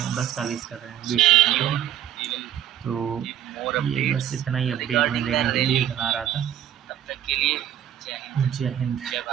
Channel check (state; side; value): quieter; left; 10.9 dB